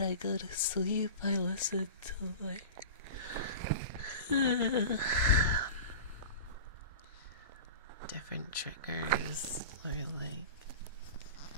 go to sleep, I listen to, like, different triggers, or, like,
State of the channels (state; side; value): inverted; both; correlation -0.33